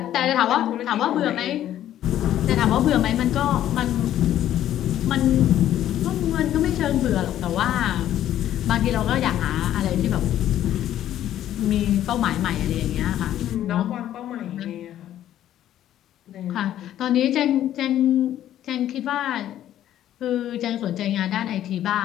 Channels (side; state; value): right; quieter; 12.0 dB